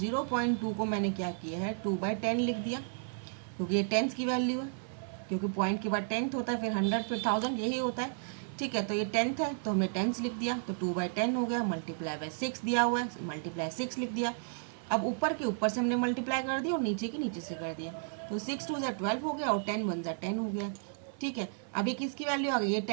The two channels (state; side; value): silent; left; 56 dB below the other